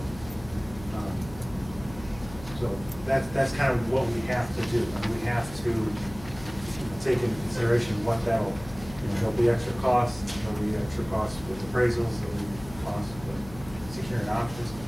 that's kind of what we have to do. And we have to take into consideration what that'll, there'll be extra costs, there'll be extra costs with appraisals, there'll be costs with securing options,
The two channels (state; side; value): noise; left; hum, 16 dB below the sound